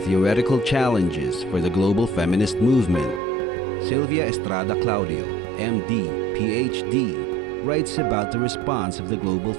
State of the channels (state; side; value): drops out; left; at 3.2 s